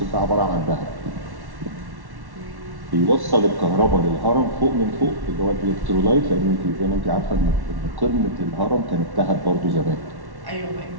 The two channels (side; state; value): left; late; 1.1 ms